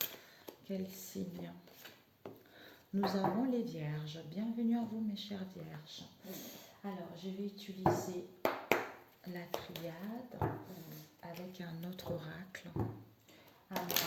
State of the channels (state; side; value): identical; both; correlation 1.00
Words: quel signe. Nous avons les vierges. Bienvenue à vous mes chères vierges. Alors, je vais utiliser la triade avec un autre oracle. Alors,